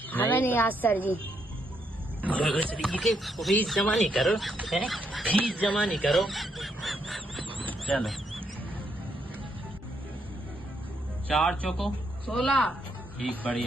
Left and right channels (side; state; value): both; normal; correlation 0.77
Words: नहीं आज सर जी। फीस जमा नहीं करो, फीस जमा नहीं करो। चलो 4 चौको 16। ठीक,